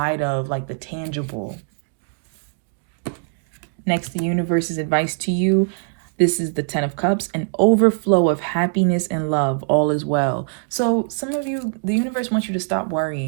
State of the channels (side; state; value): left; silent; 56 dB below the other